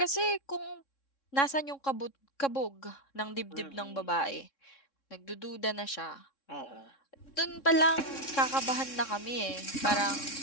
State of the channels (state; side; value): late; right; 3.6 ms